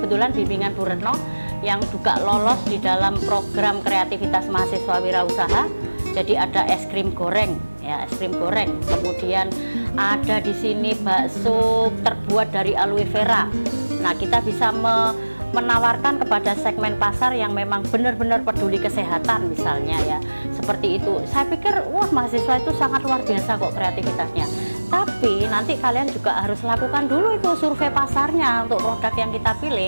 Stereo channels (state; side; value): inverted; both; correlation -1.00